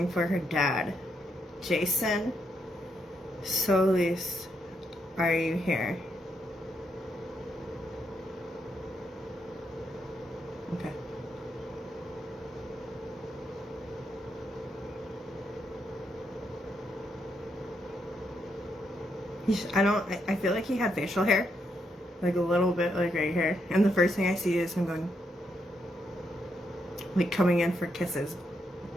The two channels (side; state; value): both; normal; correlation 0.79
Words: for her dad. Jason Solis, are you here? Okay. I feel like he had facial hair. Like a little bit, like right here. And the first thing I see is him going, like coming in for kisses.